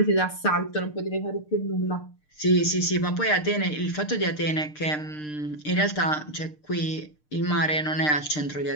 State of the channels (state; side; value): late; right; 6.6 ms